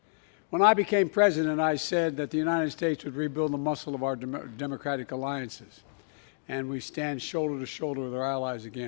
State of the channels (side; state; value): right; silent; digital silence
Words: When I became president, I said that the United States would rebuild the muscle of our democratic alliances, and we stand shoulder to shoulder with our allies